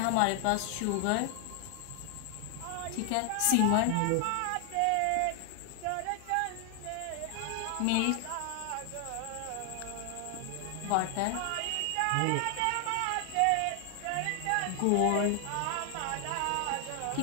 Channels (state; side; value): different; both; correlation 0.00